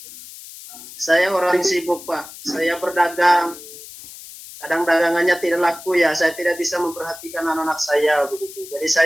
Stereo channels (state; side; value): noise; left; hiss, 16 dB below the sound